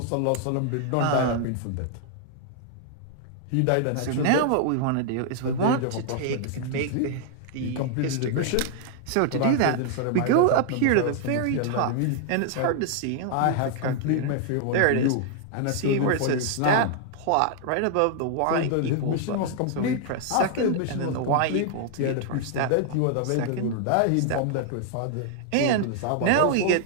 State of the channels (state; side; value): different; both; correlation 0.00